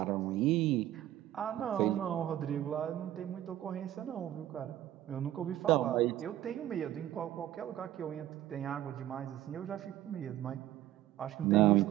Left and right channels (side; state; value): left; quieter; 13.1 dB